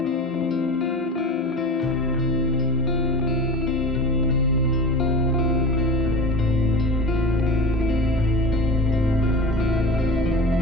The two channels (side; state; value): both; normal; correlation 0.33